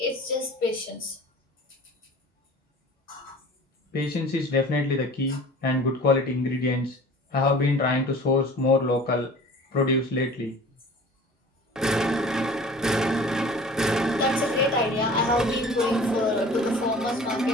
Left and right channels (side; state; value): both; normal; correlation 0.43